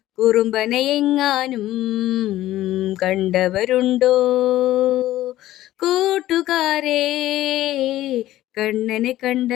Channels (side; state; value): right; quieter; 14.7 dB